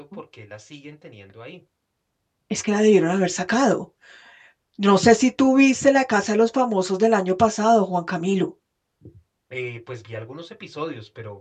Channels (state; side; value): identical; both; correlation 1.00